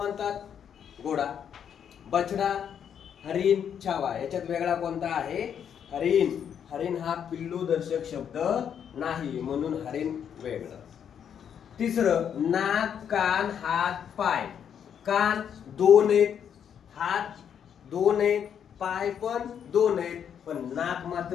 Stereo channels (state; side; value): quieter; right; 8.4 dB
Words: घोडा. बछडा, हरिण, छावा याच्यात वेगळा कोणता आहे? हरिण. हरिण हा पिल्लू दर्शक शब्द नाही, म्हणून हरिण वेगळं. तिसरं, नाक, कान, हात, पाय. कान 2 आहेत, हात 2 आहेत, पाय पण 2 आहेत, पण नाक